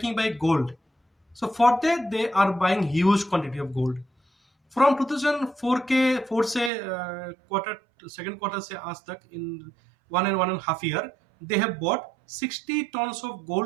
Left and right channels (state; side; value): drops out; left; at 6.7 s